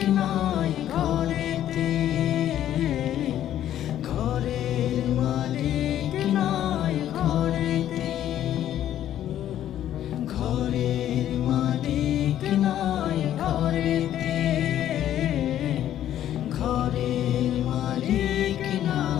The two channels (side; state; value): right; quieter; 11.6 dB